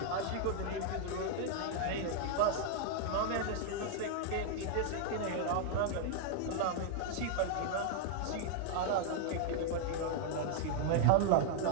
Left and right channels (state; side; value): different; both; correlation 0.00